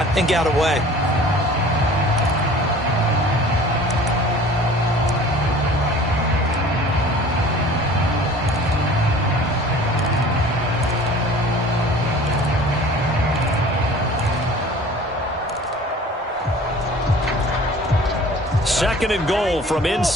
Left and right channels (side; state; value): both; normal; correlation 0.46